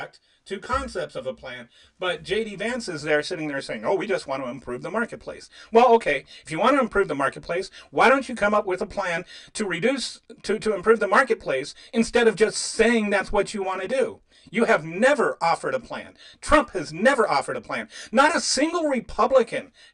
to concepts of a plan. But J.D. Vance is there sitting there saying, "Oh, we just want to improve the marketplace." Well, okay, if you want to improve the marketplace, why don't you come up with a plan to improve the marketplace instead of just saying that's what you want to do? You have never offered a plan. Trump has never offered a plan. Not a single Republican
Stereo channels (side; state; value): both; identical; correlation 1.00